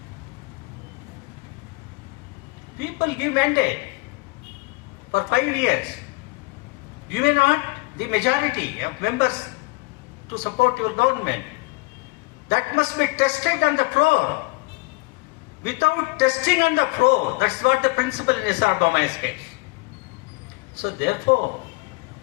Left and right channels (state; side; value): quieter; right; 25.4 dB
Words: People give mandate for 5 years. You may not the majority of members to support your government. That must be tested on the floor. Without testing on the floor, that's not the principle in S.R. Bommai's case. So therefore,